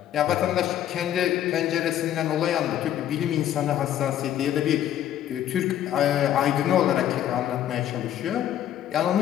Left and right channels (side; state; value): right; quieter; 11.2 dB